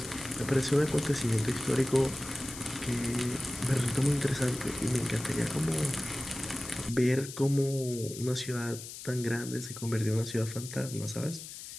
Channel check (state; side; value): noise; left; hiss, 11 dB below the sound